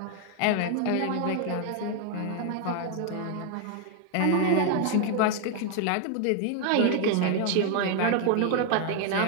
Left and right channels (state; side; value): different; both; correlation 0.00